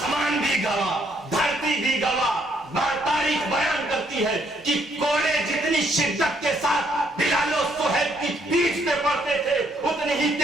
بھی گواہ, دھرتی بھی گواہ. تاریخ بیان کرتی ہے کہ کوڑے جتنی شدت کے ساتھ بلال و صہیب کی پیٹھ پہ پڑتے تھے, اتنی ہی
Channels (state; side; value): normal; both; correlation 0.70